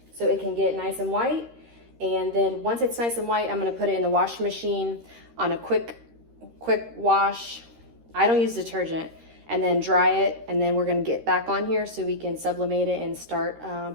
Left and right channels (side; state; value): left; late; 13 ms